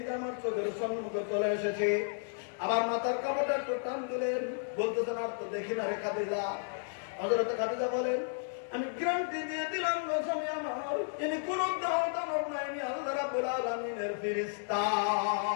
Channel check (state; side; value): silent; right; digital silence